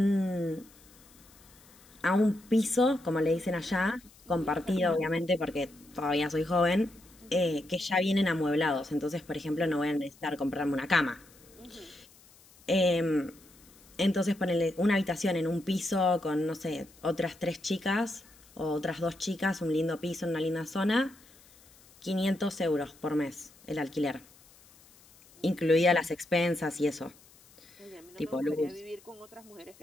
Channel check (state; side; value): noise; left; hiss, 26 dB below the sound